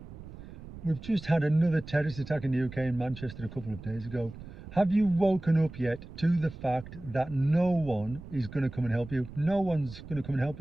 We've just had another terrorist attack in the UK in Manchester a couple of days ago. Have you woken up yet to the fact that no one is going to come and help you? No one's going to come and help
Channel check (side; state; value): right; noise; rumble, 14 dB below the sound